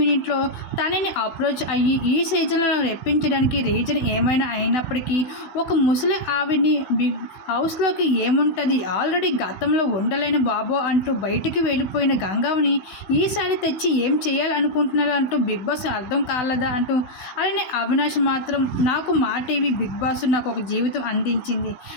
తనని అప్రోచ్ అయ్యి ఈ సీజన్లో రెప్పించడానికి రీజన్ ఏమైనా అయినప్పటికీ ఒక ముసలి ఆవిడ్ని బిగ్ హౌస్లోకి ఏముంటుంది, ఆల్రెడీ గతంలో ఉండలేని బాబో అంటూ బయటికి వెళ్ళిపోయిన గంగమ్మని ఈసారి తెచ్చి ఏం చేయాలనుకుంటున్నారు అంటూ బిగ్ బాస్ అర్థం కాలేదా అంటూ. అలానే అవినాష్ మాత్రం నాకు మా టీవీ బిగ్ బాస్ నాకు ఒక జీవితం అందించింది,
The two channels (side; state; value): right; late; 16 ms